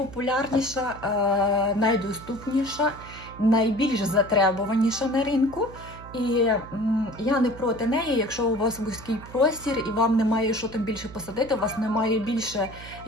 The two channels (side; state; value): right; noise; hum, 16 dB below the sound